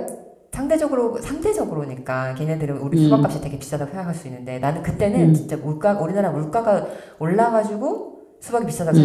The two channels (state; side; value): identical; both; correlation 1.00